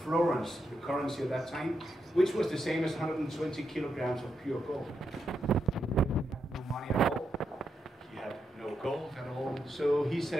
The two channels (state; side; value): normal; both; correlation 0.83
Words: florins, the currency at that time, which was the same as 120 kilograms of pure gold. He had no money at all. He had no gold at all. So he